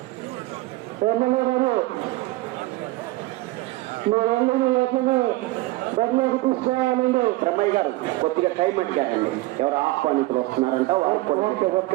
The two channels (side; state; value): left; quieter; 19.8 dB